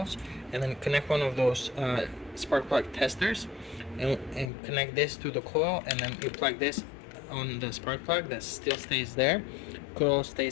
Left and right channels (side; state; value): right; drops out; at 4.5 s